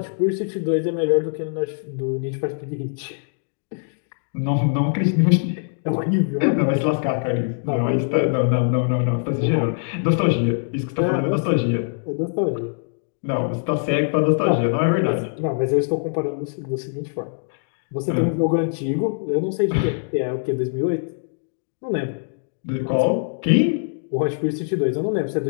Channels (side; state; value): right; silent; digital silence